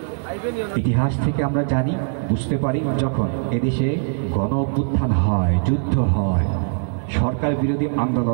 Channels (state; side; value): silent; left; 65 dB below the other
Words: ইতিহাস থেকে আমরা জানি, বুঝতে পারি, যখন এদেশে গণ অভ্যুত্থান হয়, যুদ্ধ হয়, সরকার বিরোধী